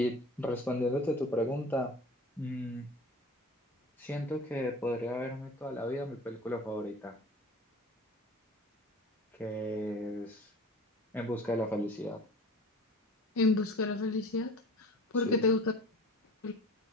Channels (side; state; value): both; normal; correlation 0.41